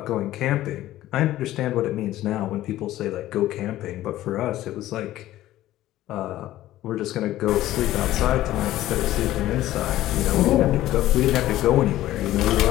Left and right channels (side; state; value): right; quieter; 14.7 dB